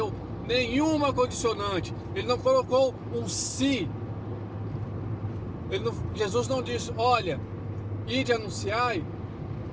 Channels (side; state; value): both; identical; correlation 1.00